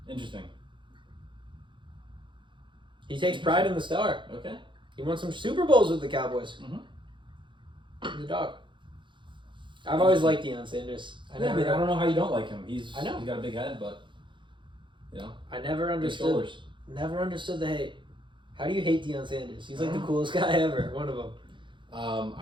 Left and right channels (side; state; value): left; late; 0.23 ms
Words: Interesting. He takes pride in the star. Okay. He won some Super Bowls with the Cowboys. Mm-hmm. The dog. I've always liked Deion Sanders. I don't know how you don't like him. I know. He's got a big head, but I never understood the hate. How do you hate Deion Sanders? He's like the coolest guy ever. One of them.